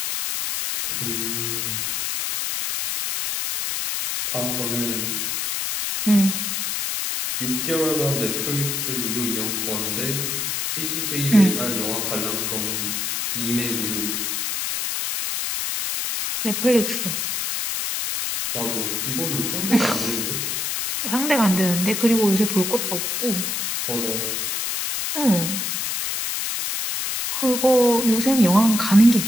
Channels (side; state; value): left; noise; hiss, 1 dB below the sound